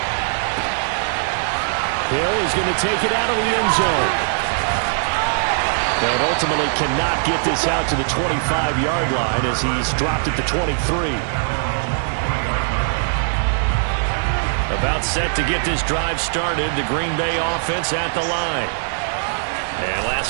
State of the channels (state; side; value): silent; left; digital silence